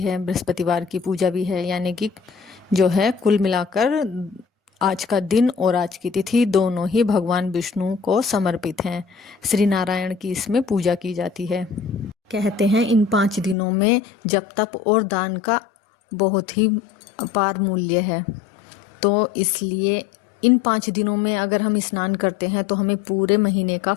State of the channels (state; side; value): drops out; right; at 13.6 s